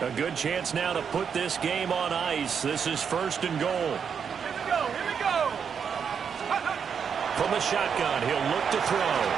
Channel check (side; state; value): left; quieter; 7.0 dB